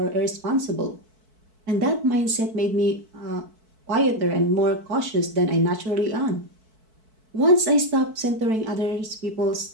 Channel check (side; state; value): left; late; 4.6 ms